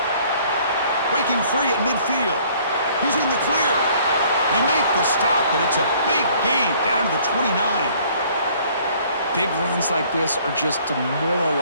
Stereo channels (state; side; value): inverted; both; correlation -0.58